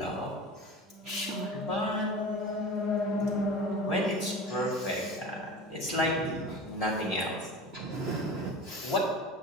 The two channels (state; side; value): normal; both; correlation 0.34